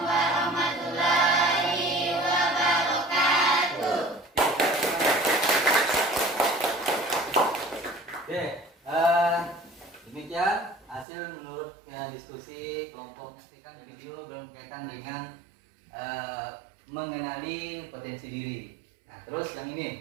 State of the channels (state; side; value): drops out; left; at 11.1 s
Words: warahmatullahi wabarakatuh. Oke, demikian hasil menurut diskusi kelompok kan video berkaitan dengan mengenali potensi diri. Nah, terus yang